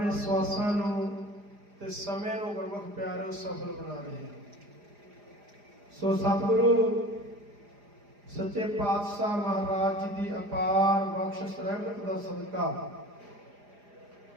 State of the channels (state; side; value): late; left; 4.9 ms